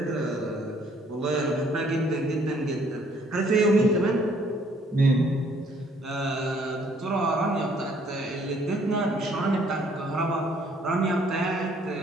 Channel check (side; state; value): both; normal; correlation 0.63